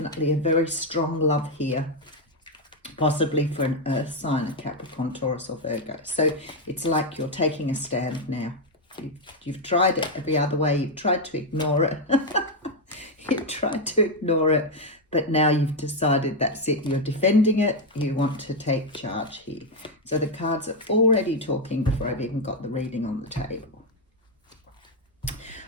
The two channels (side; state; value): both; normal; correlation 0.04